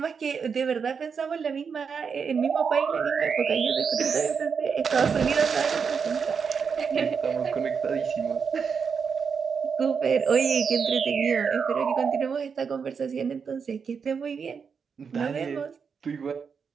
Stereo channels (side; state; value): left; quieter; 6.1 dB